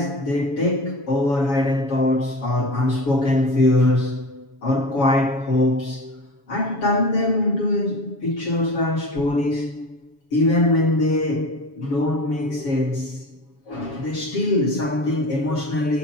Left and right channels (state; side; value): late; right; 7.2 ms